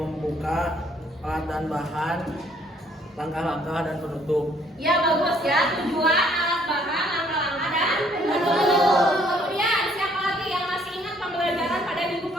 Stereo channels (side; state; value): both; normal; correlation 0.63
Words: pelatihan bahan, langkah-langkah dan penutup. Ya bagus ya, tujuan, alat bahan, langkah-langkah dan penutup. Kemudian siapa lagi yang masih ingat pembelajaran pada minggu